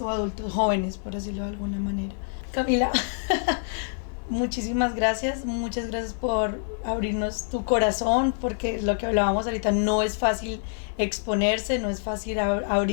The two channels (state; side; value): silent; right; digital silence